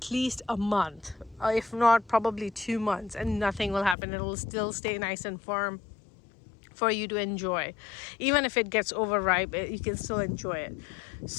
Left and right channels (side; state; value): right; drops out; at 4.0 s